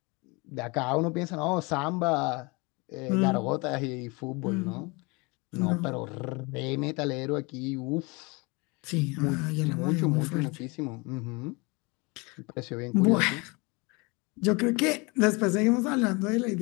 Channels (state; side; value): quieter; right; 27.4 dB